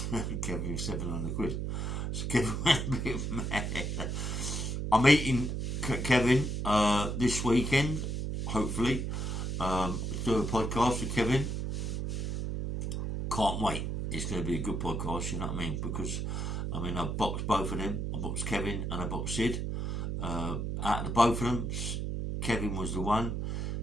Kevin £700. So Kevin went a bit mad. I'm meeting Kevin this weekend, hopefully. Do a podcast with Kevin. Can't wait. It's going to be a good podcast, you know what I mean? Because, I mean, I've boxed both of them. I boxed Kevin and I boxed Sid. Out of the both of them, Kevin was the one.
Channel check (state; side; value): noise; right; hum, 2 dB below the sound